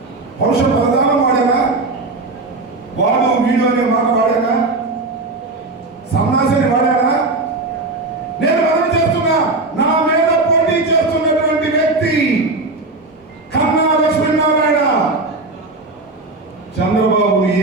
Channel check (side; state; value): left; quieter; 3.3 dB